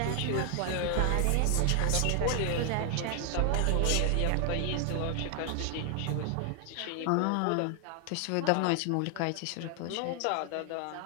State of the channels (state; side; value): different; both; correlation 0.00